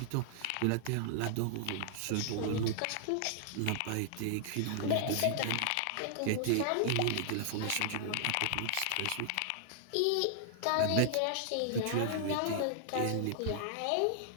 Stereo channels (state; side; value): different; both; correlation -0.01